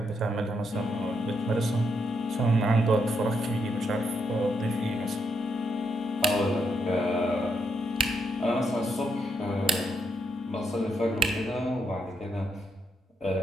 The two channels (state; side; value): normal; both; correlation 0.78